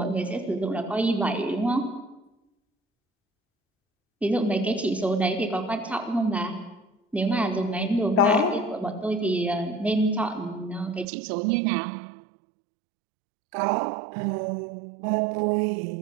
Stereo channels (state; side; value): drops out; left; at 11.1 s